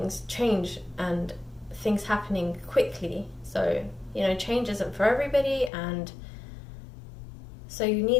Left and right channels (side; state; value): right; drops out; at 5.7 s